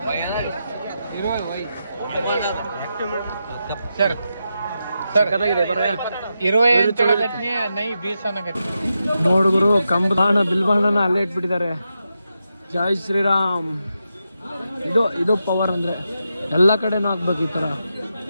ನೋಡುಗರು ಕಂಬಾಣ ಬಿಲ್ಬಾಣನ ಅಲ್ಲೇ ಇಟ್ಬಿಟ್ಟಿದ್ದಾರೆ. ಜೈ ಶ್ರೀರಾಮ್. ಇದು ಪವರ್ ಅಂದ್ರೆ ಎಲ್ಲ ಕಡೆನೂ ಹಾಕ್ಬೇಕು ಈ ತರ,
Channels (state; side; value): inverted; both; correlation -0.87